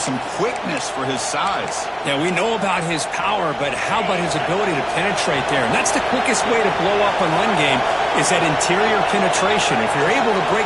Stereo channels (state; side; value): identical; both; correlation 1.00